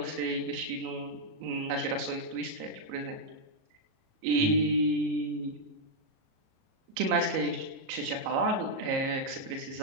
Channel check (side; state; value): left; late; 37 ms